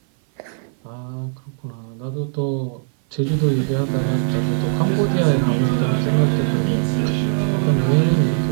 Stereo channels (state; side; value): silent; left; 57 dB below the other